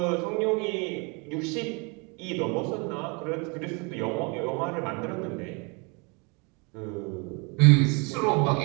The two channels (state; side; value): quieter; left; 31.6 dB